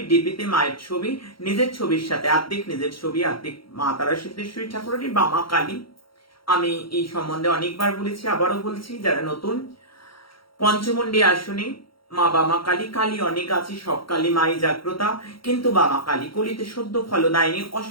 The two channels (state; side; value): late; right; 0.74 ms